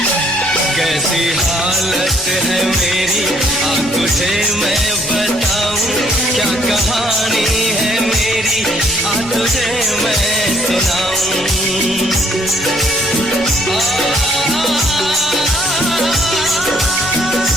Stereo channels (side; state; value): both; normal; correlation 0.65